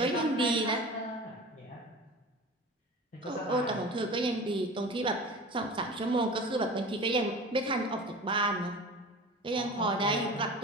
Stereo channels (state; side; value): normal; both; correlation 0.36